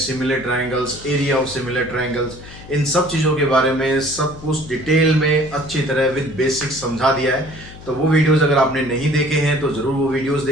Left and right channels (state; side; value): noise; left; hum, 17 dB below the sound